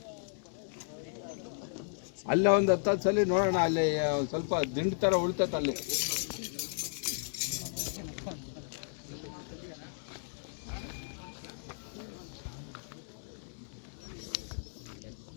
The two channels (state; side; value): silent; right; digital silence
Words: ಅಲ್ಲೇ ಒಂದು 10 ಸಲ ನೋಡೋಣ, ಅಲ್ಲಿ ಸ್ವಲ್ಪ ದಿಂಡು ಥರ ಉಳ್ತೈತೆ ಅಲ್ಲಿ.